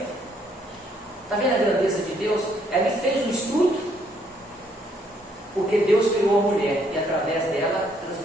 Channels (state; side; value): normal; both; correlation 0.69